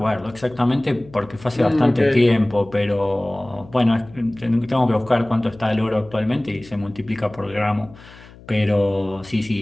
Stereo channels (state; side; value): noise; left; hum, 21 dB below the sound